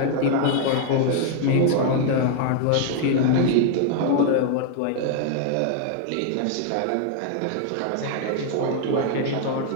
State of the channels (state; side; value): different; both; correlation 0.00